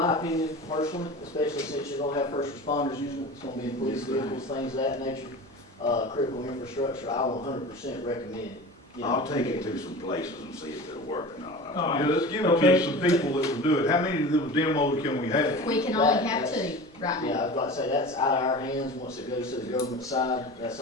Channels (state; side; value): normal; both; correlation 0.34